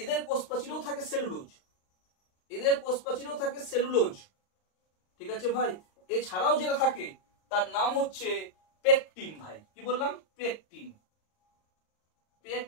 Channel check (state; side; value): late; right; 38 ms